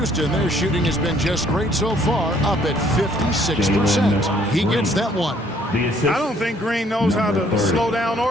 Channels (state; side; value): normal; both; correlation 0.63